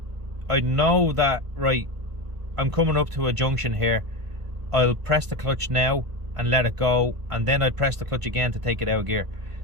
know that, right, I'm coming up to a junction here, I'll press the clutch now and let it go, and then I'd press the clutch again to take it out of gear.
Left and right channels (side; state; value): left; late; 1.5 ms